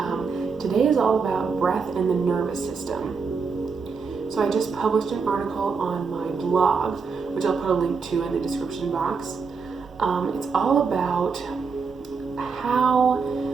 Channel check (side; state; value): left; quieter; 5.2 dB